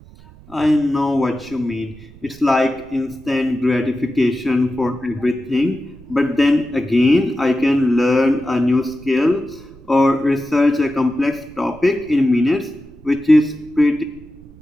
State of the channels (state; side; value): noise; right; rumble, 22 dB below the sound